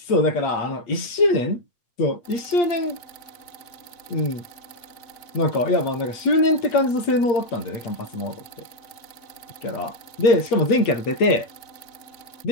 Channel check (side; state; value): right; late; 8.6 ms